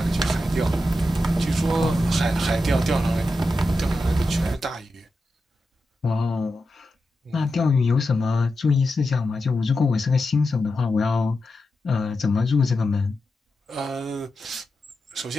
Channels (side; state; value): both; normal; correlation 0.89